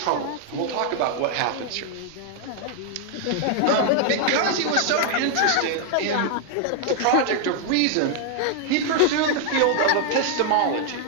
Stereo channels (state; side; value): different; both; correlation 0.00